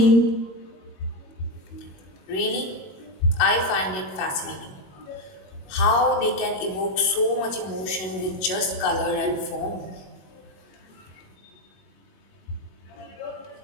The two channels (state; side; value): late; right; 22 ms